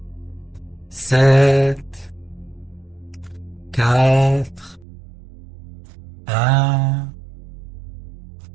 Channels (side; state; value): left; drops out; at 4.9 s